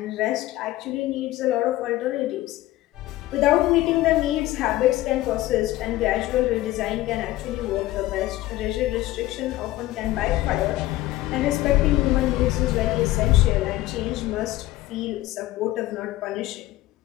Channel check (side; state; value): right; quieter; 16.4 dB